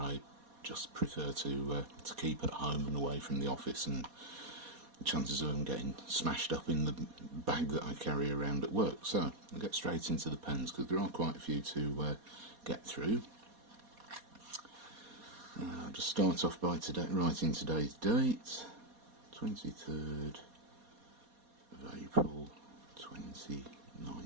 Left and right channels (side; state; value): left; late; 4.2 ms